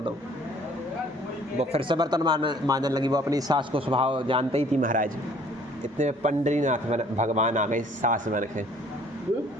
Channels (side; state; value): both; normal; correlation 0.56